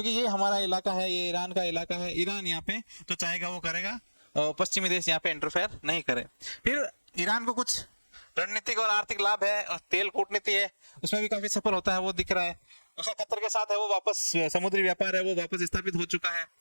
ये हमारा इलाका है, ये ईरान का इलाका है, ईरान यहाँ पे जो चाहेगा वो करेगा, पश्चिमी देश यहाँ पे इंटरफेयर नहीं करे। फिर ईरान को कुछ रणनीतिक और आर्थिक लाभ है, और तेल कूटनीति है उसमें भी काफी सफल होता है वो दिख रहा है। उसका कतर के साथ है वो वापस समुद्री व्यापार है वो वापस स्थापित हो चुका है,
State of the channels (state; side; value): inverted; both; correlation -1.00